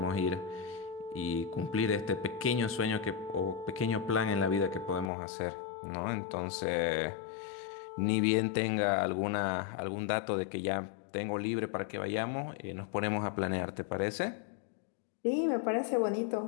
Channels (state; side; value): drops out; right; at 5.1 s